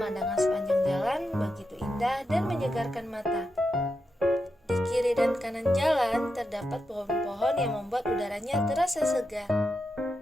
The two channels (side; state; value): both; normal; correlation 0.87